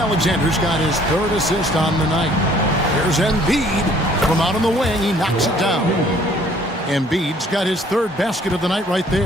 got his 3rd assist on the night. Here's Embiid from out on the wing. He knocks it down. Embiid's got his 3rd basket of the night right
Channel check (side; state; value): both; normal; correlation 0.58